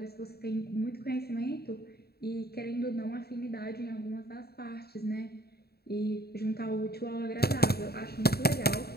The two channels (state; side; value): late; right; 0.46 ms